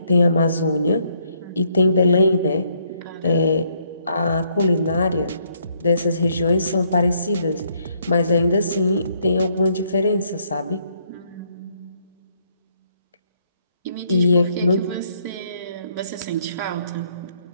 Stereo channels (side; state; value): both; inverted; correlation -0.70